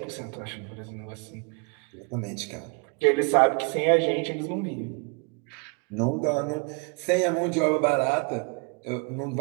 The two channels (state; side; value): quieter; left; 33.7 dB